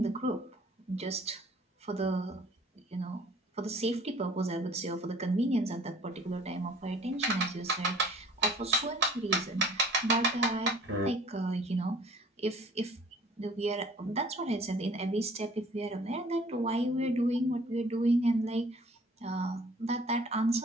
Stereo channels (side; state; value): both; normal; correlation 0.53